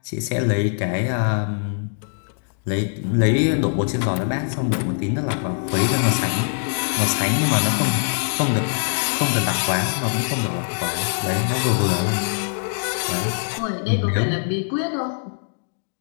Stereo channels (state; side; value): silent; right; digital silence